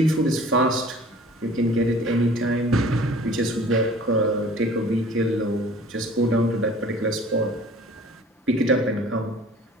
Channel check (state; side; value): normal; both; correlation 0.48